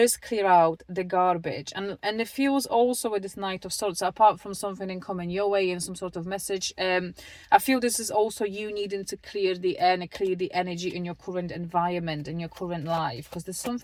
clear out the garbage. And it feels also with this Knight of Swords, apart from something in coming your way and some sort of message, I feel this is also you needing to clear the air and clear the energy in your current environment, in your current life, because there's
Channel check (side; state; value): both; identical; correlation 1.00